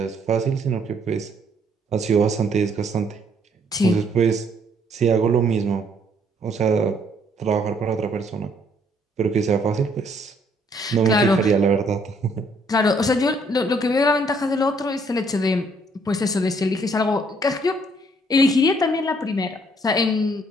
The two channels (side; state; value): both; normal; correlation 0.66